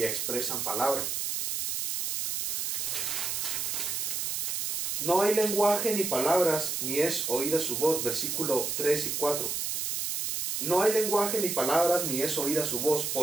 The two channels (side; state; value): right; noise; hiss, 1 dB below the sound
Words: expresan palabra. No hay lenguaje ni palabras, ni es oída su voz, versículo 3 y 4. No hay lenguaje ni palabras, ni es oída su voz.